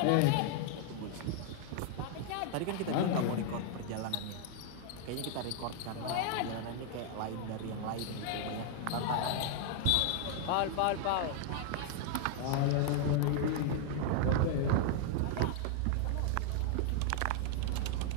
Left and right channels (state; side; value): different; both; correlation 0.00